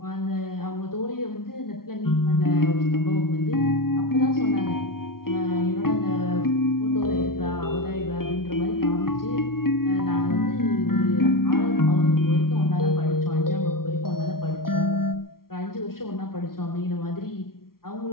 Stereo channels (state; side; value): late; right; 0.93 ms